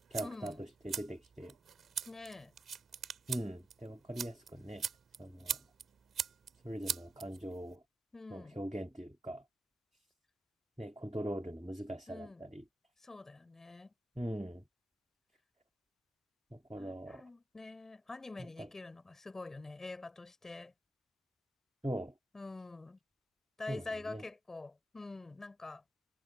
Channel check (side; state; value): both; normal; correlation 0.87